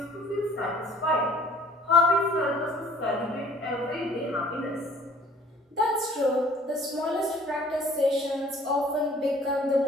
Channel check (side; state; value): both; normal; correlation 0.53